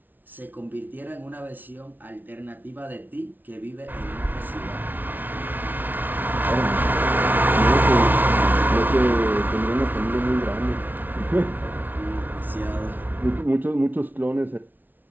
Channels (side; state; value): left; late; 0.087 ms